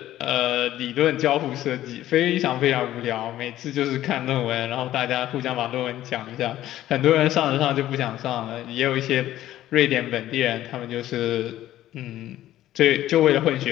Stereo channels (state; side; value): quieter; right; 13.6 dB